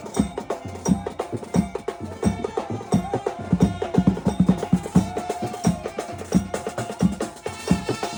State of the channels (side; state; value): both; identical; correlation 1.00